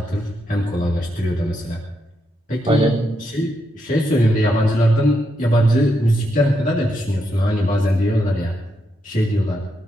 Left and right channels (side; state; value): both; normal; correlation 0.81